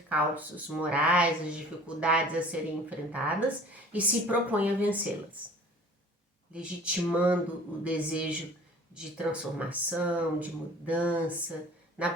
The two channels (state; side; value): normal; both; correlation 0.47